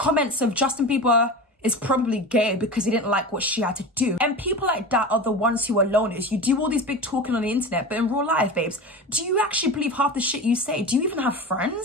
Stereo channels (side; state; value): both; normal; correlation 0.29